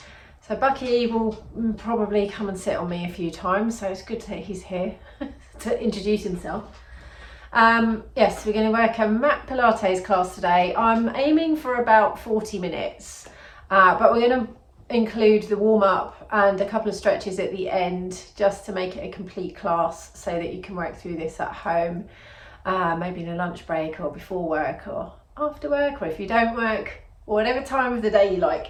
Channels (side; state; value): both; identical; correlation 1.00